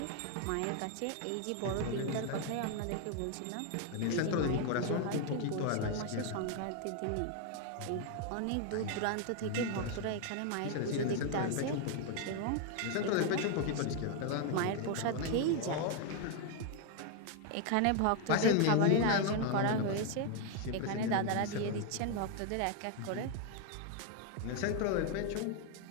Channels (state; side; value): different; both; correlation 0.00